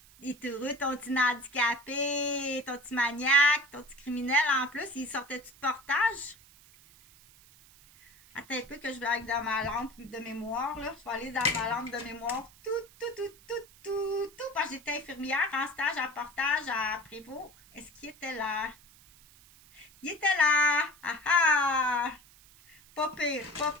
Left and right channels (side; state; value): right; noise; hiss, 25 dB below the sound